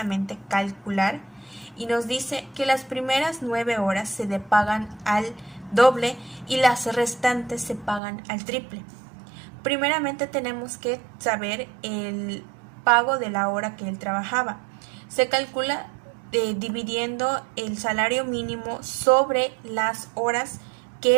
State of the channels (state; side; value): drops out; left; at 8.0 s